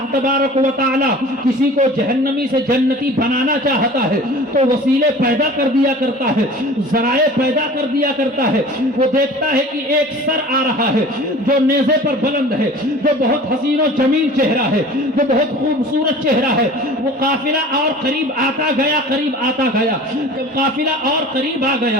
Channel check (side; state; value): both; normal; correlation 0.42